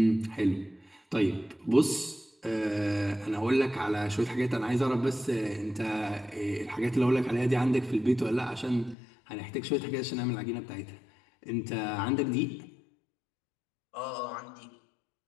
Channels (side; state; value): right; drops out; at 9.0 s